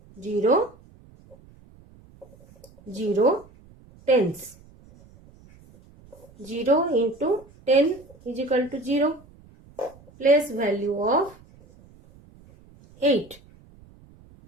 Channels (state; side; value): noise; right; rumble, 26 dB below the sound